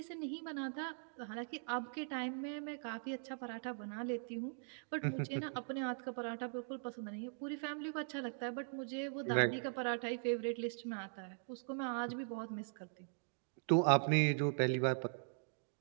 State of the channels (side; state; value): left; silent; digital silence